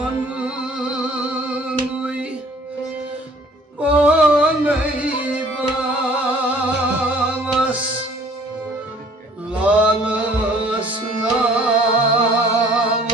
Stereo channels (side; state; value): both; normal; correlation 0.54